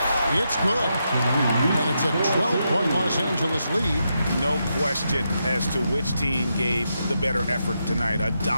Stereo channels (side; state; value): both; inverted; correlation -0.84